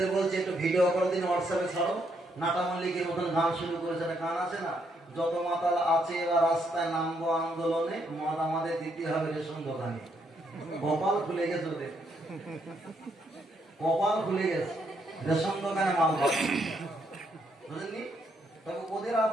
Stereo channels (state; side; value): normal; both; correlation 0.74